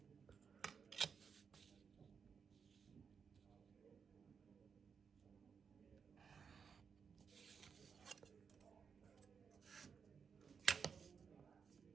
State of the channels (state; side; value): quieter; left; 6.2 dB